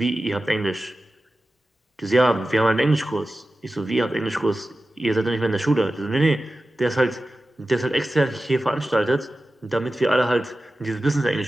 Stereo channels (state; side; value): normal; both; correlation 0.94